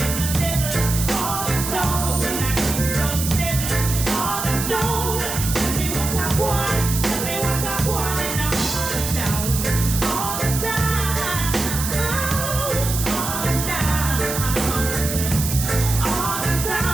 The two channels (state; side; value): noise; right; hiss, 4 dB below the sound